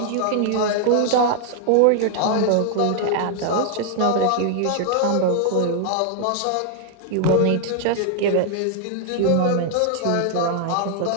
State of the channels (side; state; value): both; different; correlation 0.00